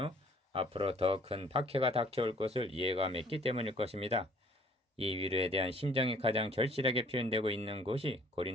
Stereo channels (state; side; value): normal; both; correlation 0.57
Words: 앞으로 더 큰 박해가 닥쳐올 것을 예감했기 때문일 것입니다. 이 위로에 대한 심정이 가장 절실하게 표현되고 있는 곳이